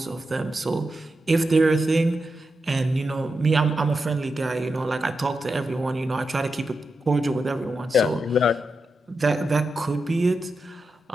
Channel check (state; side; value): normal; both; correlation 0.88